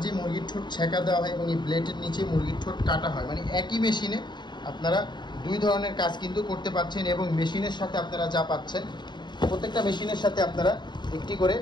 মুরগির ঠোঁট ছেঁকা দেওয়া হয় এবং এই ব্লেডের নিচে মুরগির ঠোঁট কাটা হয়, মানে একই মেশিনে আপনারা দুই ধরনের কাজ কিন্তু করতে পারছেন। এবং মেশিনের সাথে আপনারা যা পাচ্ছেন, প্রত্যেকটা মেশিনের সাথে আপনারা একটি করে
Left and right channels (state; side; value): late; right; 0.22 ms